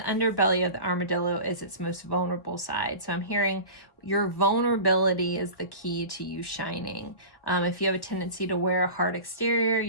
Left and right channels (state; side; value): late; right; 1.6 ms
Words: of the armadillo is its most vulnerable side. So I'm hearing your vulnerability is the key to you shining. If you have a tendency to wear a hard exterior,